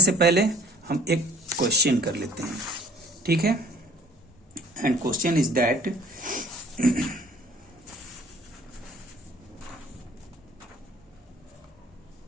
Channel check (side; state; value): both; normal; correlation 0.54